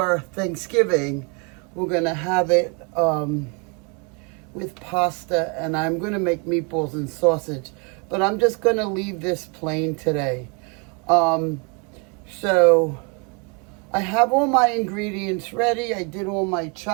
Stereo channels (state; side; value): quieter; left; 33.9 dB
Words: Thanksgiving. We're going to have it with pasta, and I'm going to make meatballs and sausage. But I'm just going to leave this plain today. So I have all my ingredients ready. I did all my